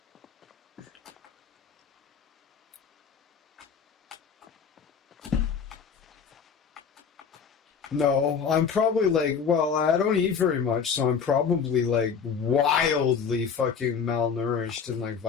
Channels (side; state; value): right; quieter; 6.4 dB